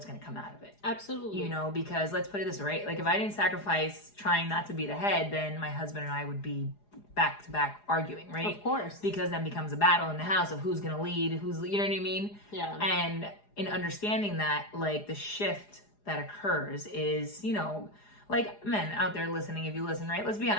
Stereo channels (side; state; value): right; late; 4.9 ms